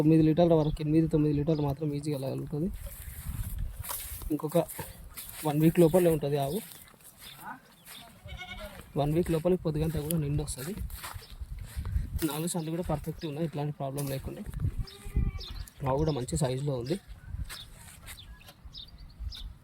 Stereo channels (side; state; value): both; identical; correlation 1.00